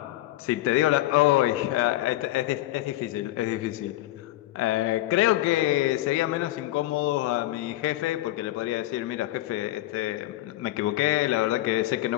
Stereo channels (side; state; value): right; quieter; 16.1 dB